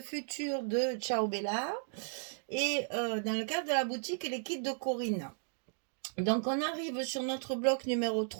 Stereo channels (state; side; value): silent; left; digital silence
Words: Future de Ciao Bella et dans le cadre de la boutique et les kits de Corinne. Donc on arrive sur notre bloc numéro